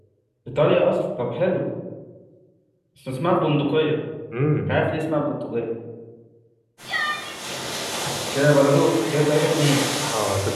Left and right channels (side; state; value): both; identical; correlation 1.00